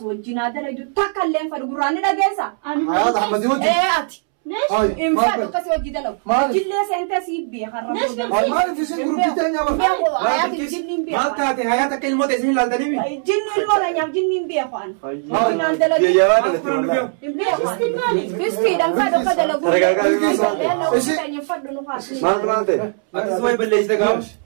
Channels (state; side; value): silent; left; 66 dB below the other